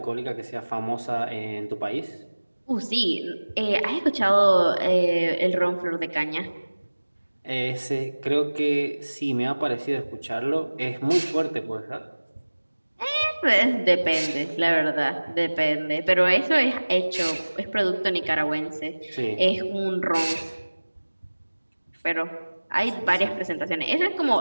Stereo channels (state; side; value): inverted; both; correlation -1.00